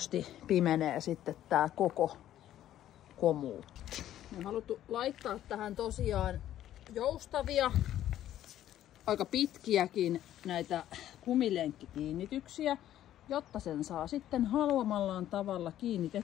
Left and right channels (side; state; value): right; quieter; 12.2 dB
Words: pimenee sitten tää koko komuutti. Me on haluttu laittaa tähän tosiaan joustavia, aika pitkiäkin näitä kumilenkkikiinnityksiä, jotta sen saa sitten haluamallaan tavalla